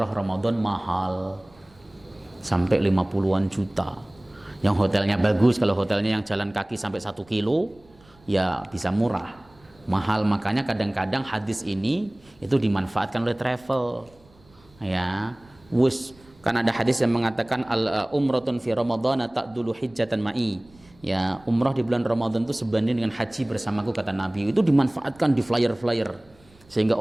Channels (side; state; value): right; noise; rumble, 29 dB below the sound